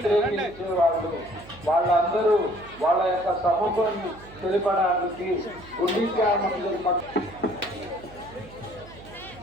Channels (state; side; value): noise; right; hum, 20 dB below the sound